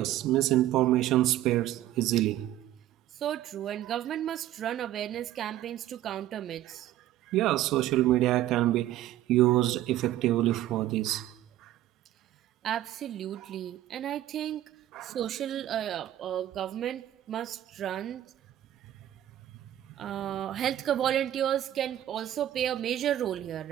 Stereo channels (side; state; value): left; quieter; 13.3 dB